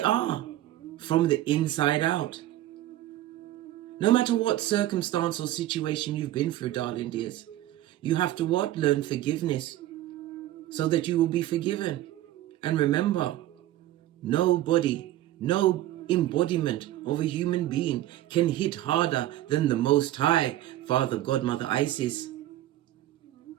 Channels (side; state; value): left; quieter; 14.4 dB